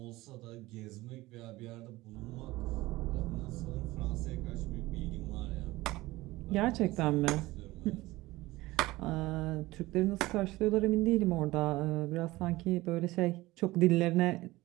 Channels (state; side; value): quieter; left; 19.1 dB